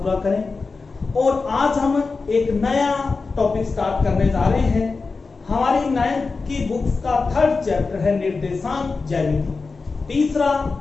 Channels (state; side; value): quieter; right; 4.2 dB